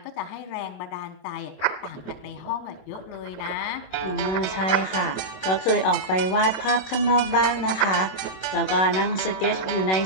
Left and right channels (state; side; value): late; right; 27 ms